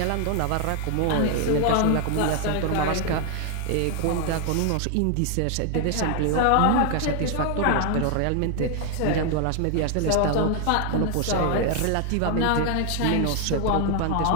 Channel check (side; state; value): both; different; correlation 0.00